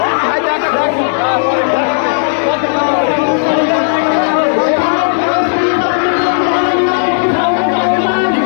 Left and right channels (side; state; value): right; silent; digital silence